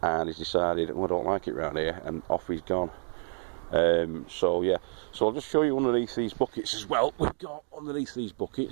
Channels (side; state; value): left; silent; 58 dB below the other